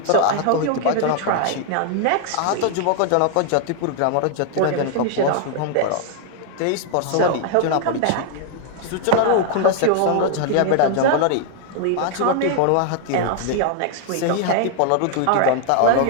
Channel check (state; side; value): different; both; correlation 0.00